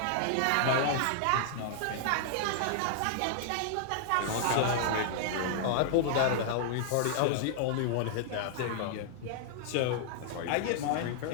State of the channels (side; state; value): both; different; correlation -0.01